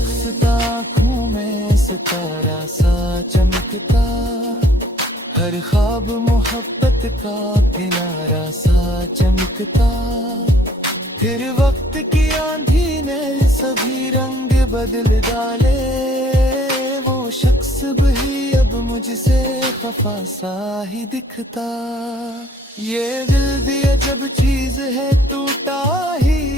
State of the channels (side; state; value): both; normal; correlation 0.59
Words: आँखों में सितारा सा चमकता, हर ख्वाब मोहब्बत का किनारा सा चमकता। फिर वक्त की आंधी ने सभी रंग बदल डाले, वो शख्स भी अब मुझसे खफा सा ही दिखता। ये दिल भी अजब चीज है, टूटा